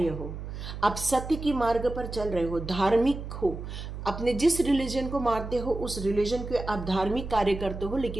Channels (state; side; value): noise; right; hum, 8 dB below the sound